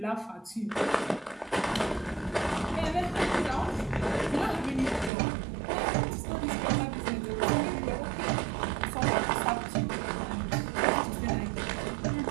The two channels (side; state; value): left; drops out; at 5.1 s